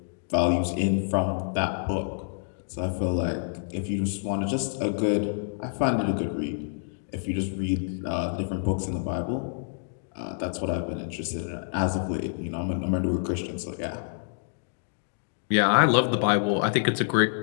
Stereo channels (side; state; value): right; silent; digital silence